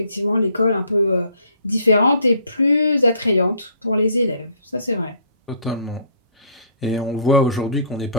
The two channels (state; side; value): inverted; both; correlation -0.57